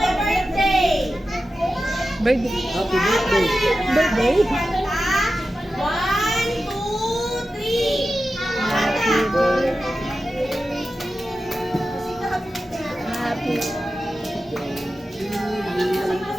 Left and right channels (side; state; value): both; normal; correlation 0.92